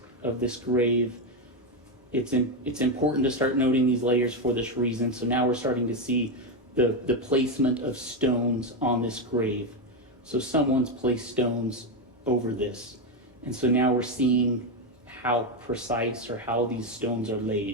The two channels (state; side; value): normal; both; correlation 0.08